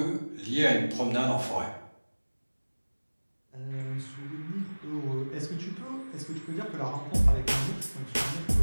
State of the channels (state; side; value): inverted; both; correlation -1.00